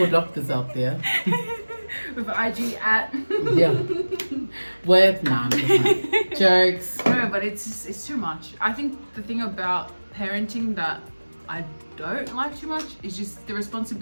doctors out there. With IG at. Yeah. With, nah, I'm just like, jokes. No, but it's too much. I think the thing about parenting that I don't like too much is just the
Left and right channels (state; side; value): inverted; both; correlation -1.00